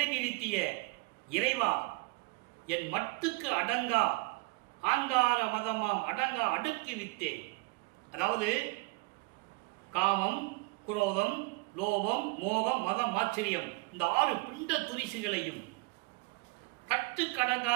இறைவா, என் மட்டுக்கு அடங்கா ஆங்கார மதமாம் அடங்கா அடுக்கி வித்தே. அதாவது காமம், குரோதம், லோபம், மோகம், மதம், ஆச்சரியம், இந்த 6 பிண்ட துரிசுகளையும்,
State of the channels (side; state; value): left; quieter; 26.7 dB